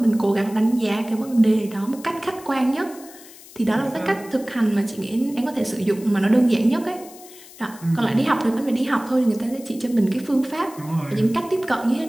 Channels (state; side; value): noise; left; hiss, 20 dB below the sound